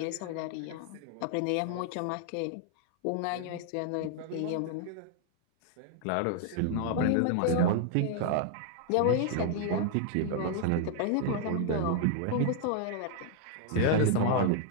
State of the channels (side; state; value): both; different; correlation 0.00